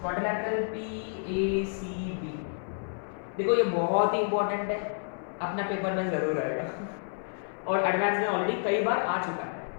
क्वाड्रिलैटरल PACB। देखो ये बहुत ही इंपॉर्टेंट है, अपना पेपर में जरूर आएगा और एडवांस में ऑलरेडी कई बार आ चुका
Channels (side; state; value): right; silent; 58 dB below the other